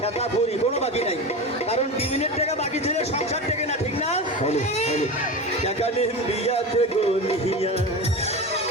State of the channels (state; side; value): normal; both; correlation 0.25